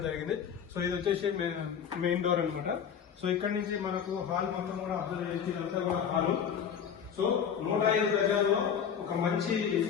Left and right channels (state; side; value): quieter; right; 7.7 dB